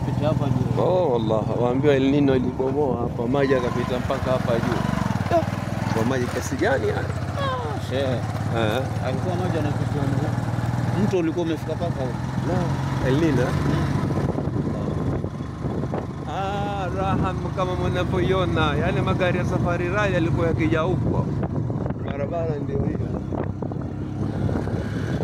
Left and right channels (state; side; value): identical; both; correlation 1.00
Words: hapa juu. Oh wallah, waambiwa El Nino ilibomoa hapa, maji yakapita mpaka hapa juu. Kwa maji kiasi gani haya? Alikuwa maji yanapita huko. Mto ulikuwa umefika mpaka huko. El Nino. Raha kama mnavyoiona, yale magari ya Safari Rally yalikuwa yakija huko. Barabara ndio hiyo.